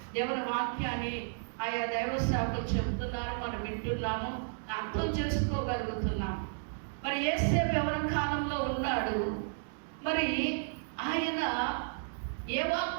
దేవుని వాక్యాన్ని ఆయా దైవ సేవకులు చెబుతున్నారు, మనం వింటున్నాము, అర్థం చేసుకోగలుగుతున్నాం. మరి యేసేపు ఎవరి కాలంలో ఉన్నాడు? మరి ఆయన ఏ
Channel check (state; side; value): silent; left; digital silence